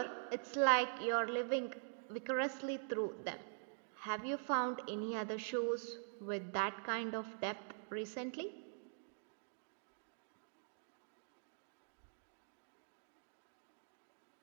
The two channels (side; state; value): left; silent; digital silence